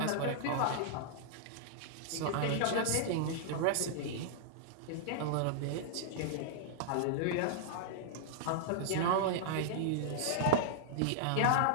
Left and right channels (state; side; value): different; both; correlation -0.01